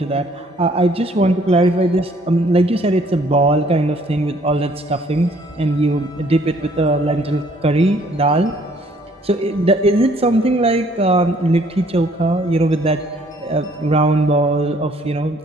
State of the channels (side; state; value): both; normal; correlation 0.61